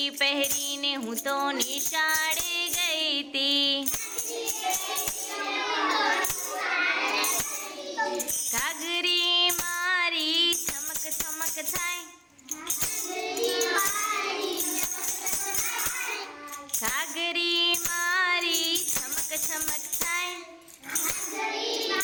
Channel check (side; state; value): both; identical; correlation 1.00